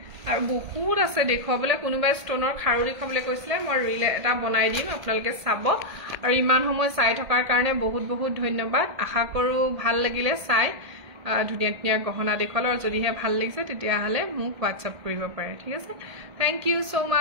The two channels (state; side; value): late; left; 1.8 ms